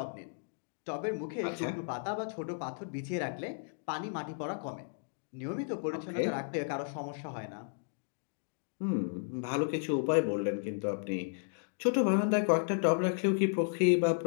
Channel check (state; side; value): silent; right; digital silence